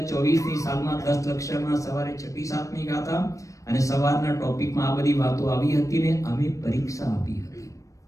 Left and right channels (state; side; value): late; right; 0.16 ms